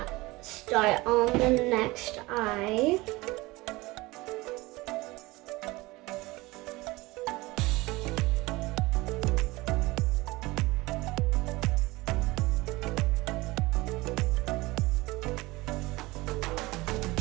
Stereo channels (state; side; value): quieter; left; 21.4 dB